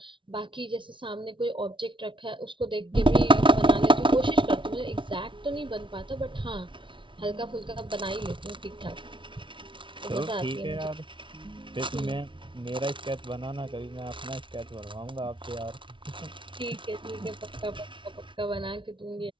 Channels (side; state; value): left; late; 0.24 ms